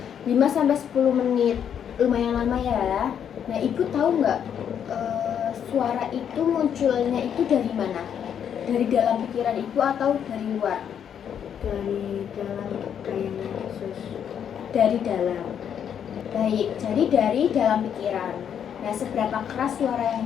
5-10 menit. Lumayan lama ya. Nah, Ibu tahu nggak suara itu munculnya itu dari mana? Dari dalam pikiran Ibu atau dari luar? Dari dalam kayaknya Yesus. Dari dalam. Baik, jadi dari dalam pikiran. Nah, seberapa keras suara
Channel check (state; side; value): quieter; right; 8.6 dB